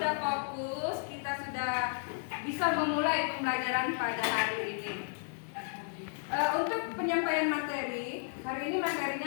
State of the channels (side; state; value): right; silent; 56 dB below the other